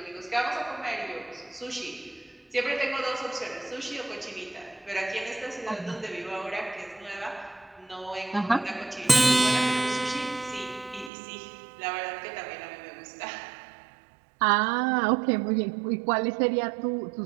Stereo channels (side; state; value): left; drops out; at 11.1 s